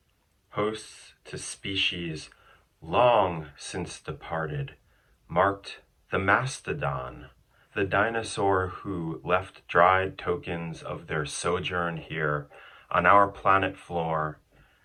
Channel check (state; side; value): identical; both; correlation 1.00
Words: hosts to species long since departed, marked the mastodon, the dinosaur who left dried tokens of their sojourn here on our planet floor.